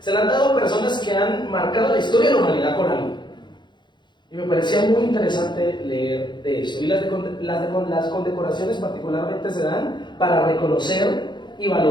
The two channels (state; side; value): late; right; 0.22 ms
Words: la han dado a personas que han marcado la historia de la humanidad con algo. Y me parecía muy interesante leer de eso. Y las condecoraciones particularmente se dan para reconocer y